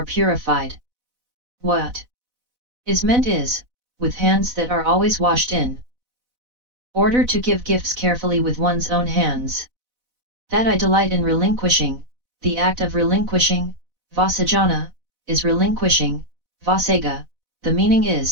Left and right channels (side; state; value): left; late; 4.0 ms